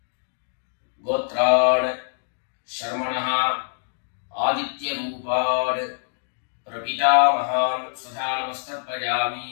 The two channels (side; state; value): right; silent; digital silence